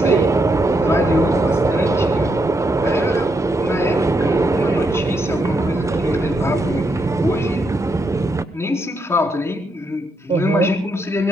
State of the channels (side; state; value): both; normal; correlation 0.79